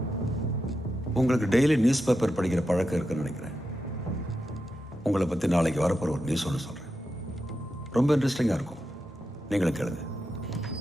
உங்களுக்கு டெய்லி நியூஸ் பேப்பர் படிக்கிற பழக்கம் இருக்குன்னு நினைக்கிறேன். உங்களை பற்றி நாளைக்கு வரப்போகிற ஒரு நியூஸ் ஒன்று சொல்கிறேன். ரொம்ப இன்ட்ரெஸ்டிங்காக இருக்கும். நீங்களும் கேளுங்க.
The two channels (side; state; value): both; normal; correlation 0.88